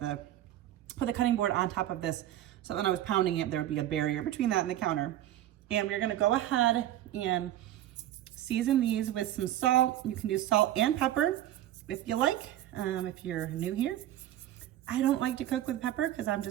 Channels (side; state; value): left; quieter; 12.9 dB